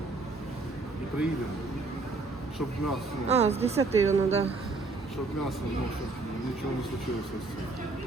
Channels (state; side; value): quieter; left; 3.6 dB